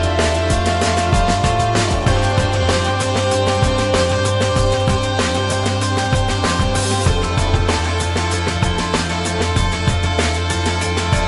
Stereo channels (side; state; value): both; identical; correlation 1.00